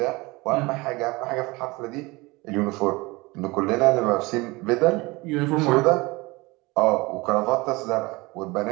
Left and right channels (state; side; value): quieter; left; 23.4 dB